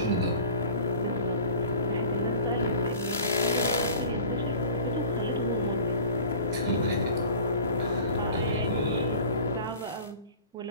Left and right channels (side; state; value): both; inverted; correlation -0.43